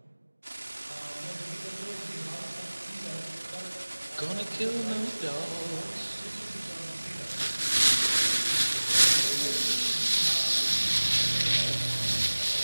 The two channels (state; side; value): inverted; both; correlation -1.00